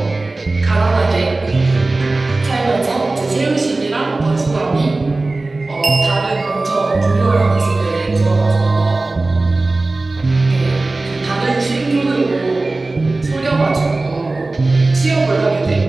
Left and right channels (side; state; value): left; quieter; 3.2 dB